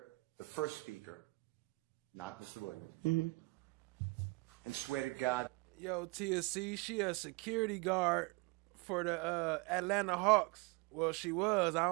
the first speaker, not Mr. Williams, and swear to God? Yo, TSC, she a security guard for the Atlanta Hawks. Well, she was. I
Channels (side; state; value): left; quieter; 25.7 dB